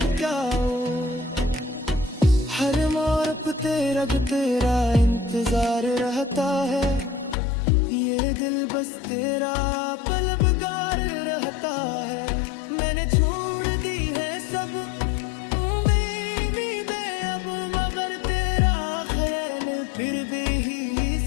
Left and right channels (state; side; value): drops out; right; at 7.4 s